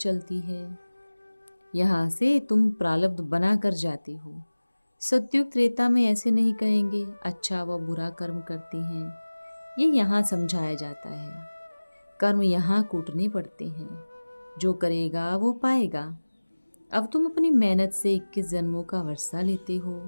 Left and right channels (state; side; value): inverted; both; correlation -1.00